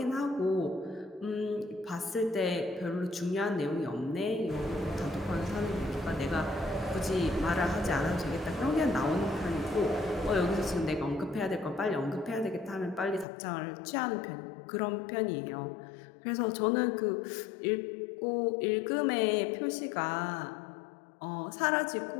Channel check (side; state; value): right; drops out; at 13.2 s